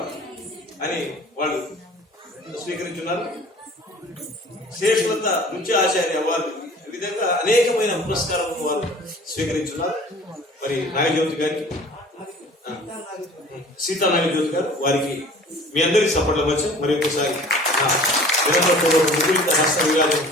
అని వాళ్ళు స్వీకరించున్నారు. శేషలత నృత్య ఆచార్య అవార్డు, ఈ విధంగా అనేకమైన పురస్కారాలను వారు స్వీకరించున్నారు. మరి నాగజ్యోతి గారికి, సీతా నాగజ్యోతి గారు, వారికి మీ అందరికీ సపోర్ట్ అవ్వచ్చు. మరి ఒకసారి ముగ్గురిత హస్త విరాజం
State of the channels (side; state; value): both; normal; correlation 0.47